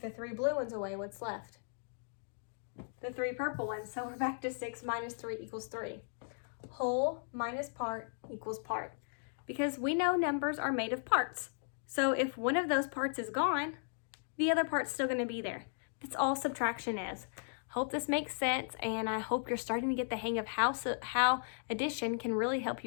the 3 blue ones away, what's left? The 3 purple ones. So we're back to 6 minus 3 equals 3. Whole minus part equals part. Because we know numbers are made of parts. So if one of those parts is gone, the other part's still going to be there. That's all subtraction is. Hope this makes sense, and I hope you're starting to get the hang of how addition can really help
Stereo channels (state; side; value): silent; right; digital silence